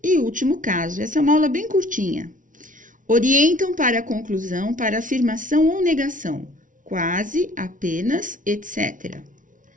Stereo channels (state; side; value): late; left; 0.38 ms